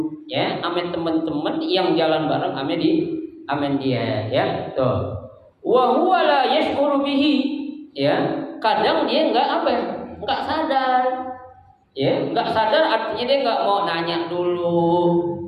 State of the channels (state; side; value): identical; both; correlation 1.00